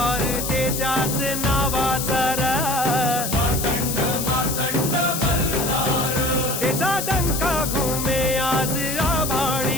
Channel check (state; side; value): noise; left; hiss, 3 dB below the sound